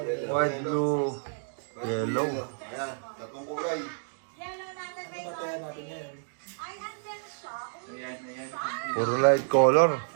White, blue, yellow. Ayan, tatlong kulay. Ano tatayan natin yan? Ayan. Puro light color.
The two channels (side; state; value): left; silent; digital silence